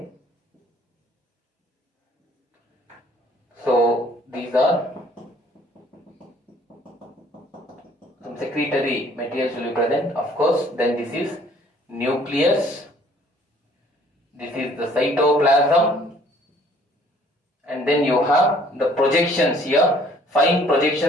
So these are some secretory materials will be present. Of course, then this is nucleus. This is the cytoplasm. And then you have the projections here. Fine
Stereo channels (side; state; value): both; normal; correlation 0.58